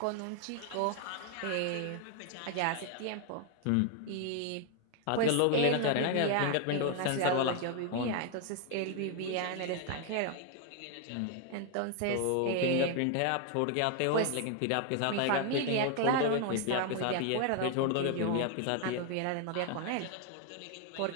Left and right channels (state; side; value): different; both; correlation 0.00